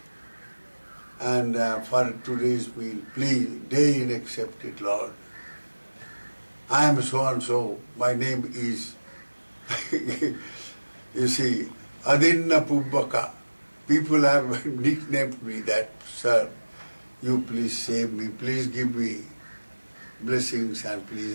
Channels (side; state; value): both; inverted; correlation -1.00